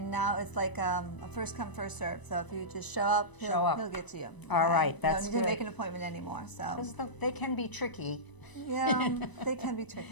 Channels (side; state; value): right; late; 1.0 ms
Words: now it's like a first come, first serve. So if you just show up, he'll get to you. All right, that's You don't need good. to make an appointment anymore. So 'Cause they can be tricky. yeah, they can be